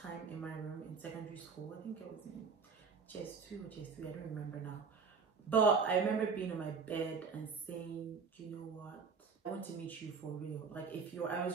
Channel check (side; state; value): left; quieter; 5.2 dB